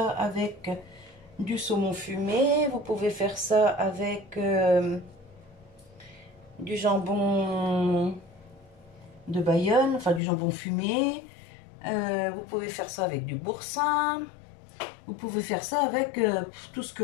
avec du saumon fumé. Vous pouvez faire ça avec du jambon de Bayonne, enfin du jambon fumé. Vous pouvez faire ça avec du boursin. Vous pouvez faire ça avec tout ce que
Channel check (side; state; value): right; drops out; at 10.2 s